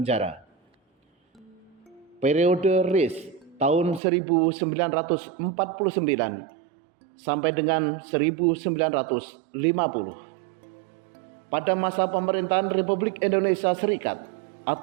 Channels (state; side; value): drops out; left; at 4.0 s